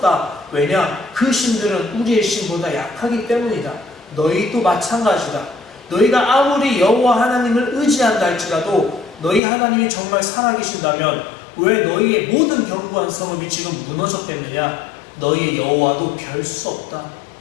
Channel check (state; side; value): drops out; right; at 9.4 s